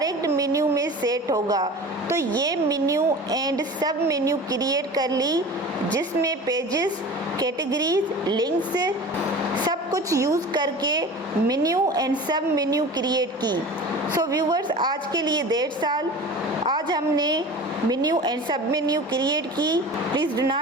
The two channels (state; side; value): normal; both; correlation 0.36